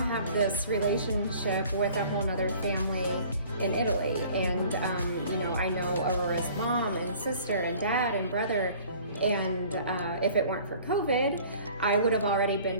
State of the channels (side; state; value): both; inverted; correlation -0.50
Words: this relationship with a whole other family in Italy, and I know Aurora's mom and sister and dad and brother, and if it weren't for COVID, I would have already been